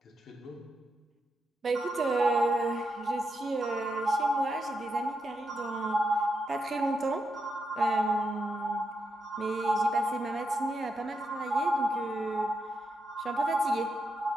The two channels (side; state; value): both; normal; correlation 0.84